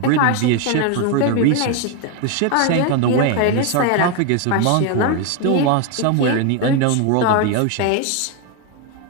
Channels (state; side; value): different; both; correlation 0.01